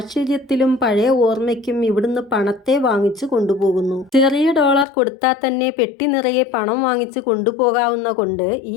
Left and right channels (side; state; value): right; drops out; at 4.9 s